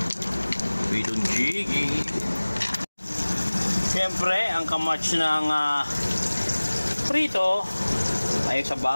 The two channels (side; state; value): both; inverted; correlation -1.00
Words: Pritong Gigi. Siyempre, ang kamatch ng prito ay